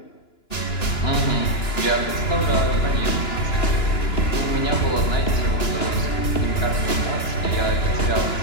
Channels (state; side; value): late; right; 2.9 ms